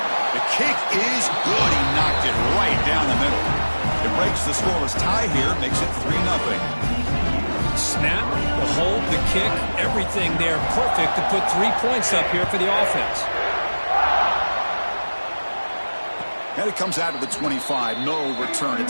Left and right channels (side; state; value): both; inverted; correlation -1.00